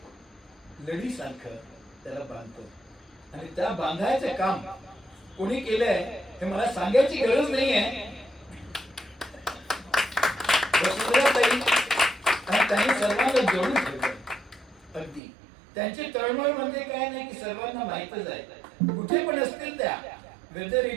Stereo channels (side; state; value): left; drops out; at 15.2 s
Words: लढीसारखं त्याला बांधतो आणि त्या बांधायचं काम कोणी केलंय हे मला सांगायची गरज नाही आहे. आणि त्यांनी सर्वांना जोडून ठेवलं. अगदी त्यांची तळमळ म्हणजे काय नाही की सर्वांना माहितच आहे. कुठे पण असतील त्या, वेदर